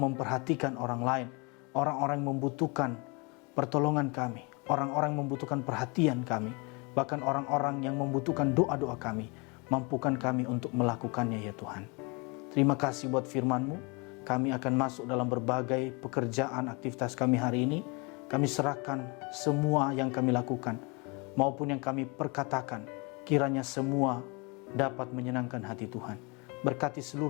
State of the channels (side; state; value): right; quieter; 29.9 dB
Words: orang lain, orang-orang yang membutuhkan pertolongan kami, orang-orang yang membutuhkan perhatian kami, bahkan orang-orang yang membutuhkan doa-doa kami. Mampukan kami untuk melakukannya ya Tuhan. Terima kasih buat firman-Mu. Kami akan masuk dalam berbagai pekerjaan aktivitas kami hari ini. Kami serahkan semua yang kami lakukan maupun yang kami perkatakan. Kiranya semua dapat menyenangkan hati Tuhan. Berkati